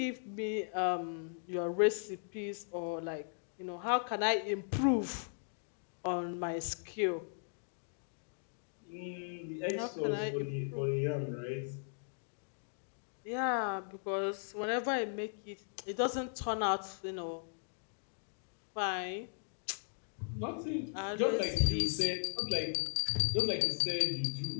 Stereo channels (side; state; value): right; silent; digital silence